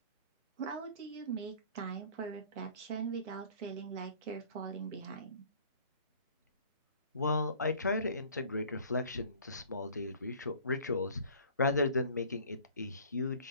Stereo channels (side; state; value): both; inverted; correlation -0.50